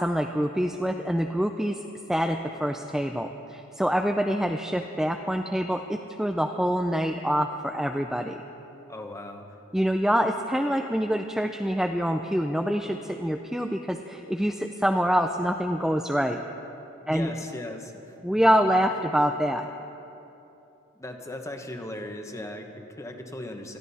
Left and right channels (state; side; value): normal; both; correlation 0.89